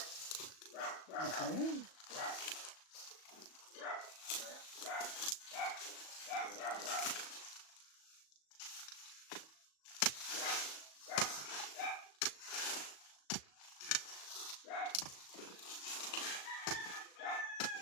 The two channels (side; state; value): right; late; 37 ms